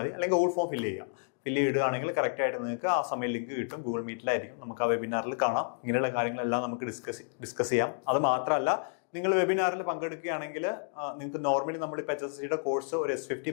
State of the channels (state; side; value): silent; right; digital silence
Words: അല്ലെങ്കിൽ ഗൂഗിൾ ഫോം ഫില്ല് ചെയ്യുക. ഫില്ല് ചെയ്യുകയാണെങ്കിൽ കറക്റ്റായിട്ട് നിങ്ങൾക്ക് ആ സമയം ലിങ്ക് കിട്ടും. ഗൂഗിൾ മീറ്റിലായിരിക്കും, നമുക്ക് ആ വെബിനാറിൽ കാണാം. ഇങ്ങനെയുള്ള കാര്യങ്ങളെല്ലാം നമുക്ക് ഡിസ്കസ് ചെയ്യാം. അത് മാത്രമല്ല, നിങ്ങൾ വെബിനാറിൽ പങ്കെടുക്കുകയാണെങ്കിൽ നിങ്ങൾക്ക് നോർമലി നമ്മളിപ്പോൾ HSCയുടെ കോഴ്സ് ഒരു S50